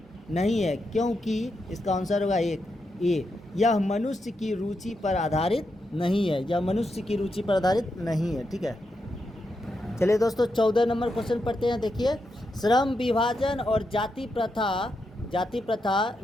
नहीं है, क्योंकि इसका आंसर होगा ए, यह मनुष्य की रुचि पर आधारित नहीं है, यह मनुष्य की रुचि पर आधारित नहीं है। ठीक है, चलिए दोस्तों 14 नंबर क्वेश्चन पढ़ते हैं। देखिए, श्रम विभाजन और जाति प्रथा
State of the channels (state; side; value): normal; both; correlation 0.84